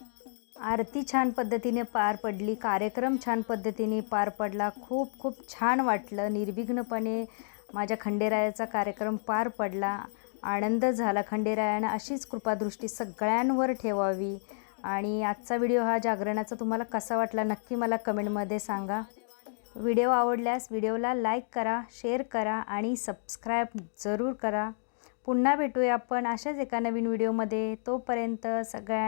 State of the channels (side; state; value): right; silent; digital silence